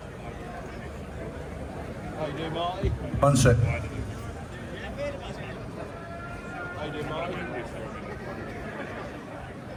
How you doing, Marty? One sec. How you doing, Marty?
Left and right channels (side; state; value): both; identical; correlation 1.00